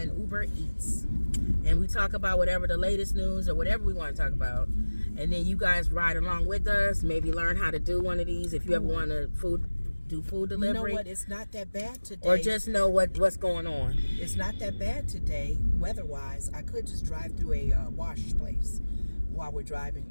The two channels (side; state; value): both; inverted; correlation -1.00